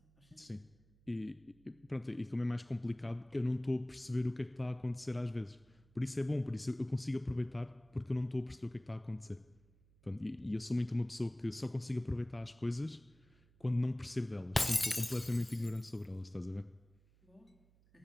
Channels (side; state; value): right; noise; hum, 30 dB below the sound